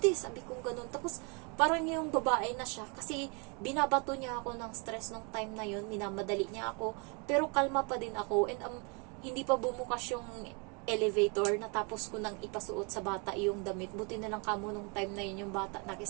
Sabi ko ganun. Tapos parang yung babae na siya kasi binabato niya ako ng stress nung time na yun, minamadali niya ako, pero kalma pa din ako and hindi pa bumukas yung elevator, natapos ko nang ipasuot sa bata yung damit. Buti na lang kamo nung time na yun yung bata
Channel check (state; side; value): quieter; left; 33.6 dB